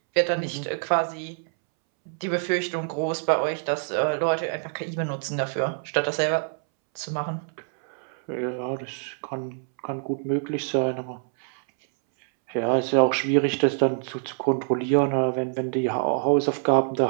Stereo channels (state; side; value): silent; left; 61 dB below the other